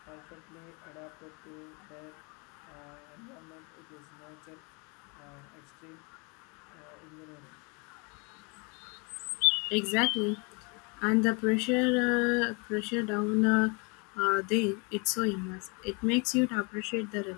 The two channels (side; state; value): right; quieter; 32.1 dB